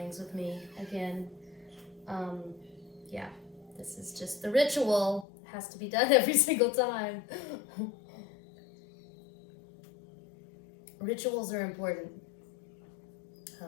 with me again. Yeah, this is just the ritual. It has to be done every single time. Rituals are important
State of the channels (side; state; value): right; drops out; at 5.2 s